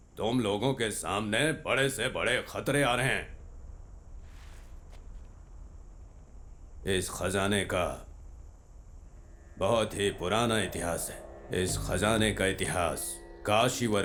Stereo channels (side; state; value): both; identical; correlation 1.00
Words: तुम लोगों के सामने बड़े से बड़े खतरे आ रहे हैं। इस खजाने का बहुत ही पुराना इतिहास है। इस खजाने का इतिहास काशीवर